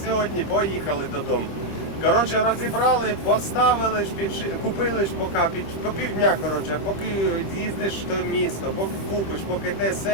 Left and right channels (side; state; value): right; late; 26 ms